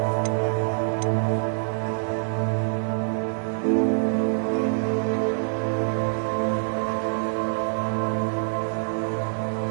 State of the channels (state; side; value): silent; left; digital silence